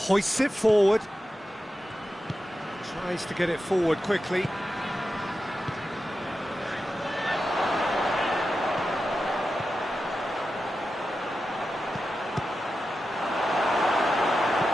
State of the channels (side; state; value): both; normal; correlation 0.91